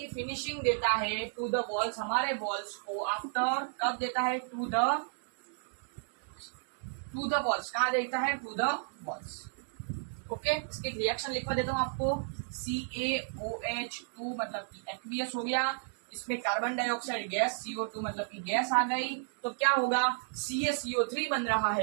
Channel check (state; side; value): silent; left; digital silence